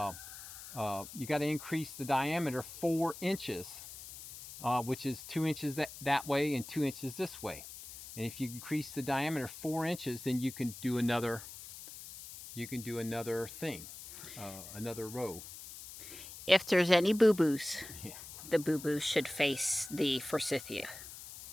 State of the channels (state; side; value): noise; left; hiss, 13 dB below the sound